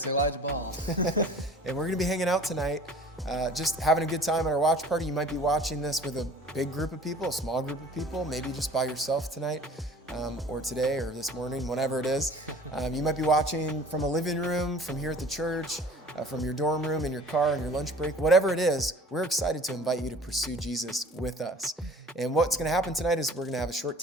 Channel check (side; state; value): both; normal; correlation 0.47